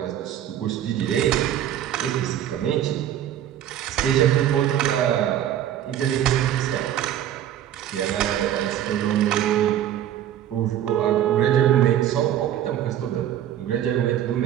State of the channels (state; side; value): quieter; left; 11.1 dB